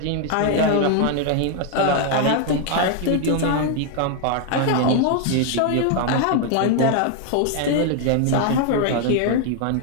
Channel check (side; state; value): both; different; correlation 0.00